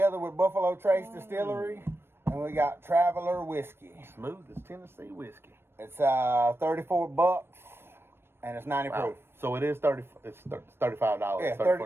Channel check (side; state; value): left; late; 0.12 ms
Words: with Buffalo Trace Distillery, and we got Traveler Whiskey. Smooth as Tennessee whiskey. It's $34, and it's 90 proof. So it is $30. It's $35.